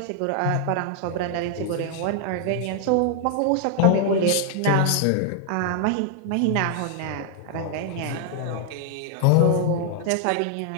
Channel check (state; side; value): different; both; correlation 0.00